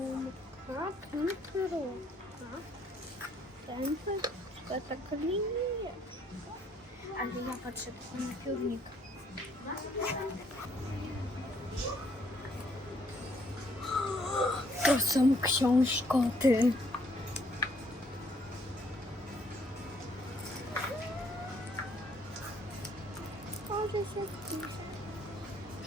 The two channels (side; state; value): both; normal; correlation 0.66